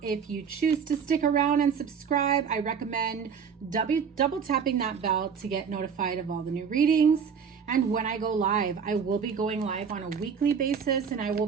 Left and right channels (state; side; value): quieter; left; 6.6 dB